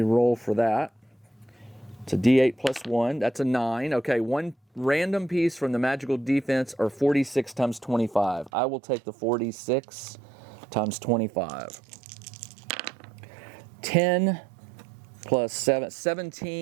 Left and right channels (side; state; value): left; drops out; at 8.5 s